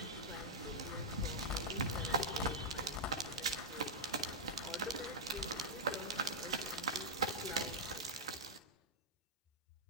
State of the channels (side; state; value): both; normal; correlation -0.07